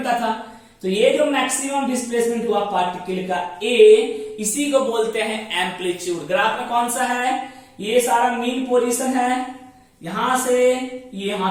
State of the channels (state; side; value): identical; both; correlation 1.00